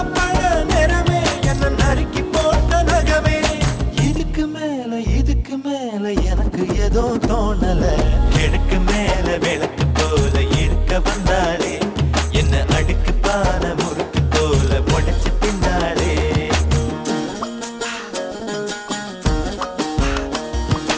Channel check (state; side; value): identical; both; correlation 1.00